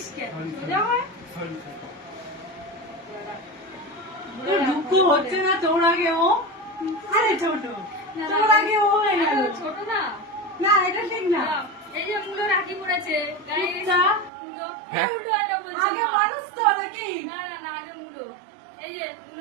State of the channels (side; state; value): left; drops out; at 14.3 s